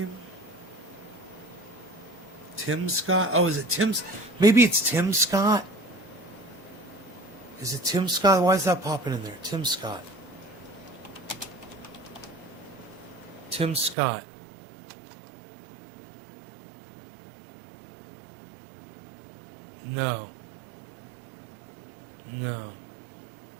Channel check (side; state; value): left; drops out; at 14.0 s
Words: Tim Scott? Oh, is it Tim? Maybe it's Tim Scott? Is it Tim Scott? Why is that popping in there? Tim Scott. Tim Scott. No. No.